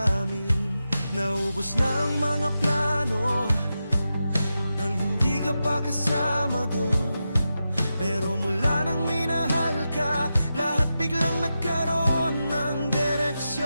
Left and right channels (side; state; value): both; inverted; correlation -0.90